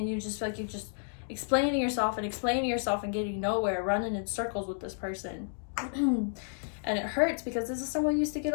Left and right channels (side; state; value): right; silent; digital silence